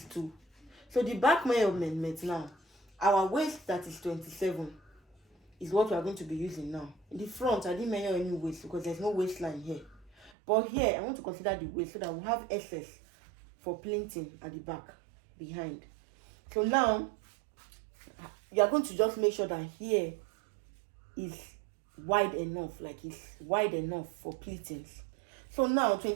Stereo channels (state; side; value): drops out; left; at 10.3 s